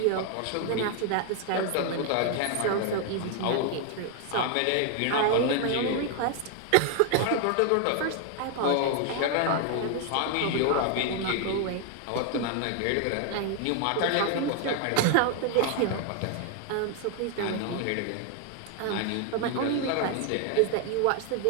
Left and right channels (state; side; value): different; both; correlation 0.00